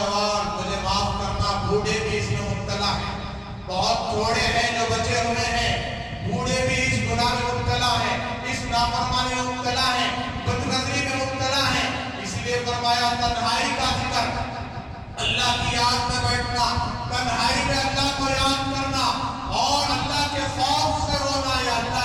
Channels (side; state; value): both; identical; correlation 1.00